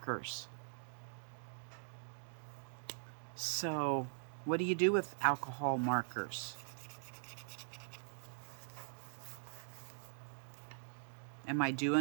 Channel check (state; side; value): silent; left; digital silence